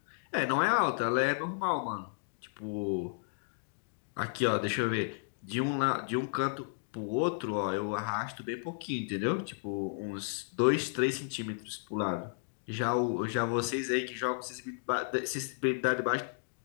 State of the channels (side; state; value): right; silent; digital silence